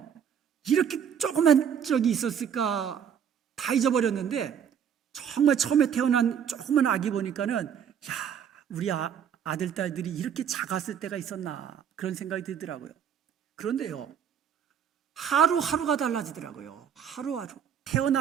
이렇게 조그만 적이 있었을까 다 잊어버렸는데, 정말 처음에 태어난 조그만 아기 보니까는 야, 우리 아들 딸들이 이렇게 작았을 때가 있었나 그런 생각이 들더라고요. 그런데요, 하루하루가 달라지더라고요. 하루하루.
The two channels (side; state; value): left; quieter; 8.3 dB